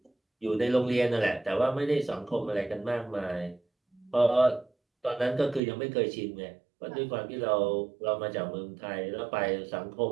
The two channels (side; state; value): left; drops out; at 5.6 s